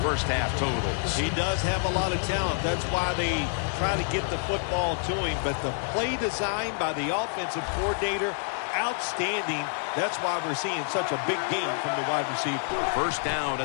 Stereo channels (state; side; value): silent; right; 60 dB below the other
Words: first-half totals. He does have a lot of talent. That's why they try to get the football to him. But the play design by the offensive coordinator, outstanding. That's why we're seeing such a big game from the wide receiver. First down